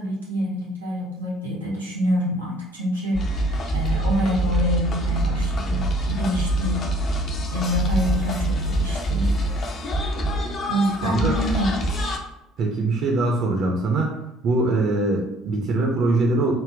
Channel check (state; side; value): normal; both; correlation 0.58